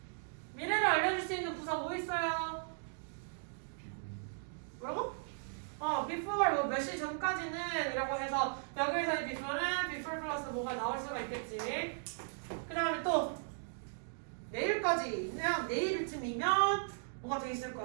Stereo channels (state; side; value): silent; left; digital silence